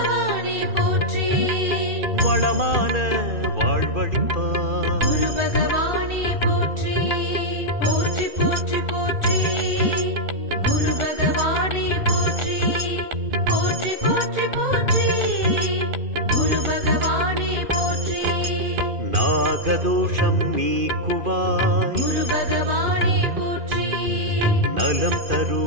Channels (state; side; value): late; left; 2.5 ms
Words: போற்றி. வளமான வாழ்வழிப்பாய். குரு பகவானே போற்றி. போற்றி போற்றி போற்றி. குரு பகவானே போற்றி. போற்றி போற்றி போற்றி. குரு பகவானே போற்றி. நாகதோஷம் நீக்குவாய். குரு பகவானே போற்றி. நலம்